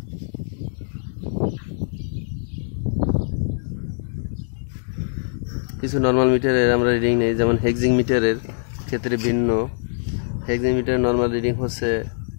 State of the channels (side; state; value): right; silent; digital silence